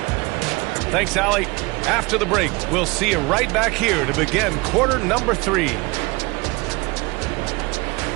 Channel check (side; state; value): left; quieter; 24.6 dB